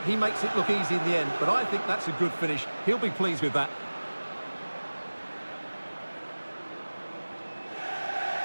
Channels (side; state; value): both; inverted; correlation -1.00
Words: makes it look easy in the end, but I think that's a good finish. He'll be pleased with that.